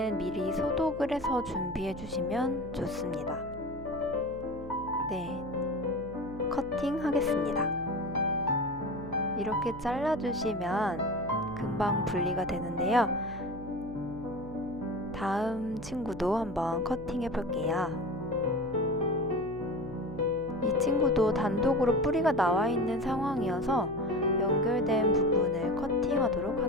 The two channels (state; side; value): noise; right; hum, 13 dB below the sound